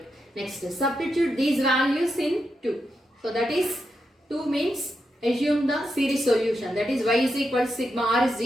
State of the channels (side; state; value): both; normal; correlation 0.85